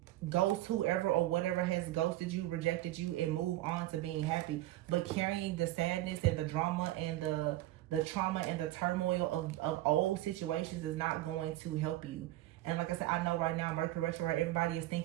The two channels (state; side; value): quieter; left; 16.0 dB